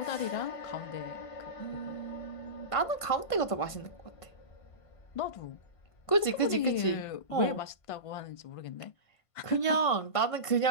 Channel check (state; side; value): late; right; 1.5 ms